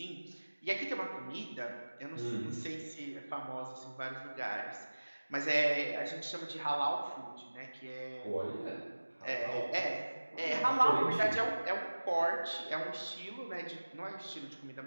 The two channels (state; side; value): inverted; both; correlation -1.00